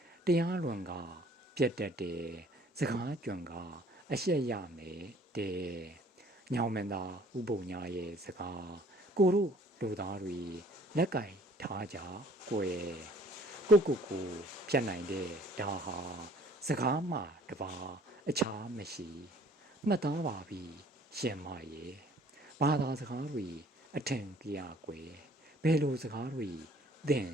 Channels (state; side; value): normal; both; correlation 0.56